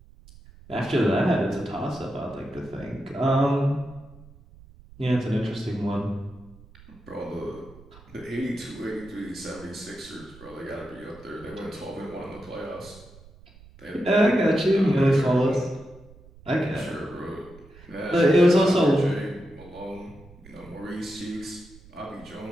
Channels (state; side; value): noise; right; rumble, 22 dB below the sound